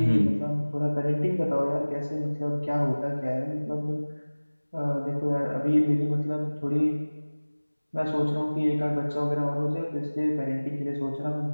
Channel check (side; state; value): both; inverted; correlation -1.00